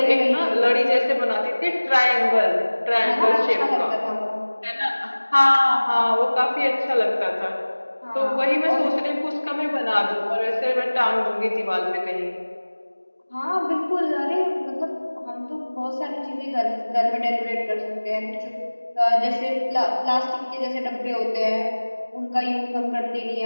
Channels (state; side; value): inverted; both; correlation -1.00